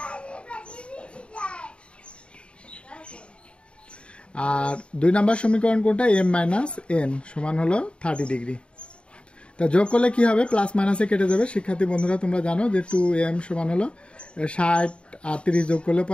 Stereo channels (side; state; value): right; late; 0.056 ms